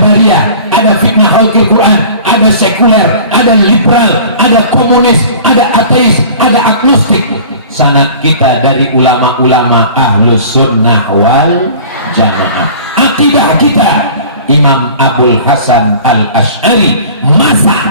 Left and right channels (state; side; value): inverted; both; correlation -0.43